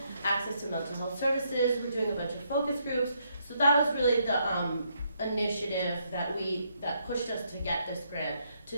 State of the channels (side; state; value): both; inverted; correlation -0.75